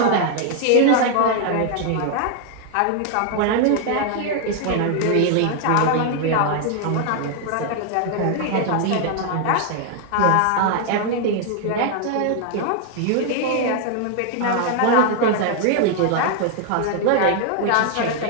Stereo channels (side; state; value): both; different; correlation 0.00